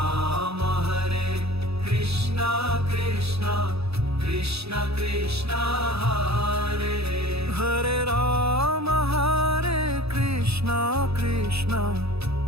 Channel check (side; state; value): left; late; 0.78 ms